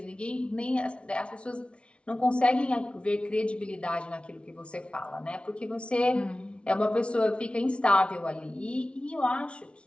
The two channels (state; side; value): late; right; 0.059 ms